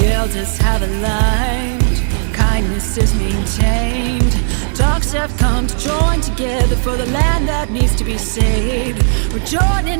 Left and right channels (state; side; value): silent; left; digital silence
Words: elders have aligned, kindness is maintained. Dogs have come to join together for the land that needs to be saved. We're